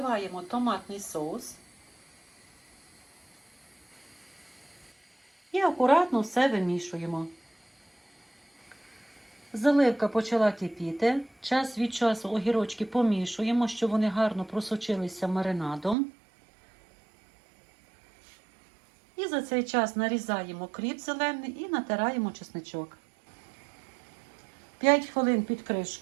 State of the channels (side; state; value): left; drops out; at 16.0 s